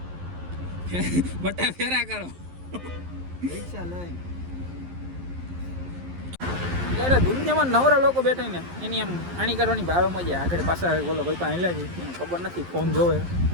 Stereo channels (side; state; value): left; late; 11 ms